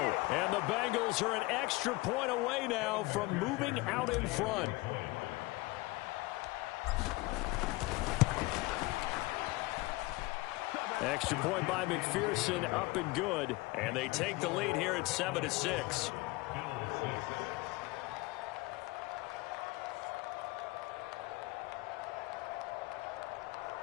And the Bengals are an extra point away now from moving out in front. Extra point by McPherson, up and good. And they take the lead here at 7-6.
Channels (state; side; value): quieter; right; 21.9 dB